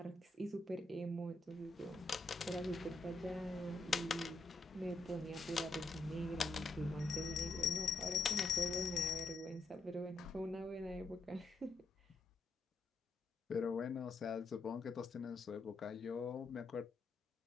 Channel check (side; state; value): right; quieter; 3.1 dB